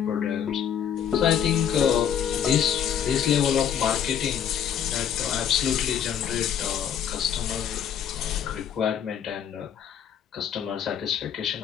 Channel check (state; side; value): quieter; right; 8.7 dB